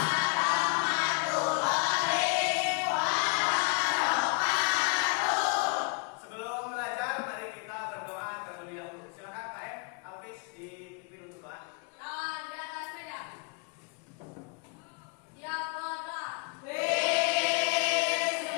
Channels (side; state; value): right; quieter; 33.2 dB